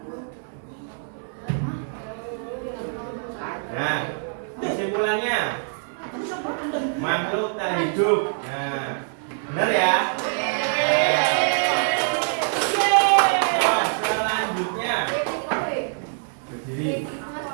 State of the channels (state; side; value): silent; left; 62 dB below the other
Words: Nah, kesimpulannya makhluk tak hidup. Nah, benar ya? Oh, selanjutnya